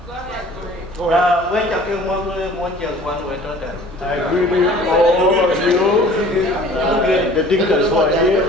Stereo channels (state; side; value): noise; right; hum, 23 dB below the sound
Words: Go ahead, I agree with all of you, the Dinkas who are here.